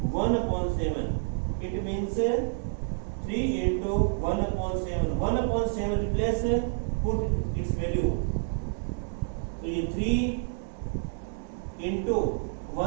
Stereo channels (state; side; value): silent; left; digital silence